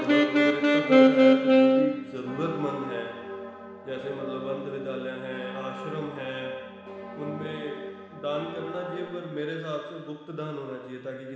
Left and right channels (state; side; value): identical; both; correlation 1.00